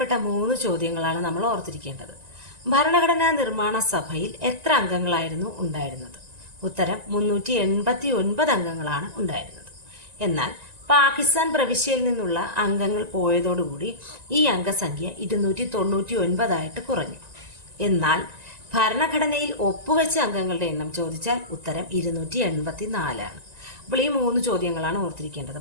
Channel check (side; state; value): left; late; 1.9 ms